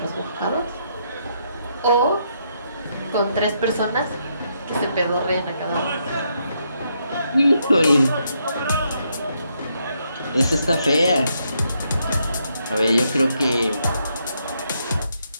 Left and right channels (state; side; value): inverted; both; correlation -0.77